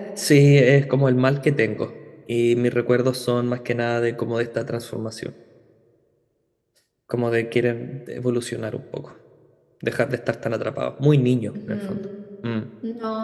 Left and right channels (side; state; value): both; identical; correlation 1.00